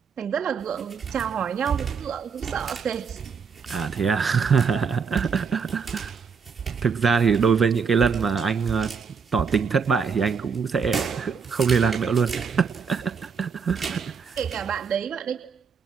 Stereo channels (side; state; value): left; quieter; 6.0 dB